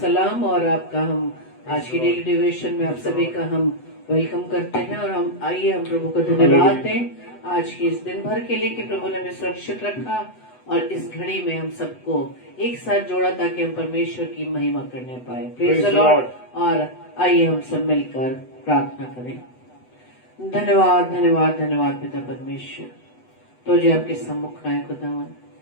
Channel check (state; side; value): late; right; 8.0 ms